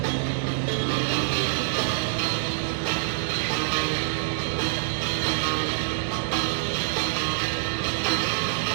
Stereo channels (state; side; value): silent; left; digital silence